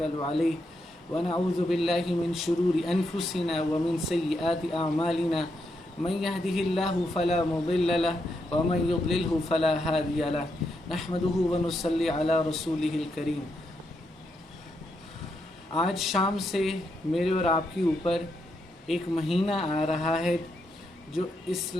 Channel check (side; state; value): both; normal; correlation 0.81